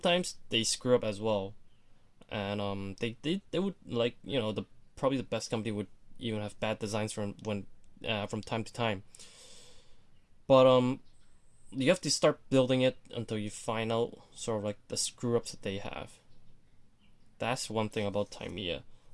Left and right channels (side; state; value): both; identical; correlation 1.00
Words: they screw up as well. And they would, like, you know, probably the best company would even have bad designs from time to time. But you have to start building it until you find out sort of like the screw ups that they have. That's one thing about Tamiya.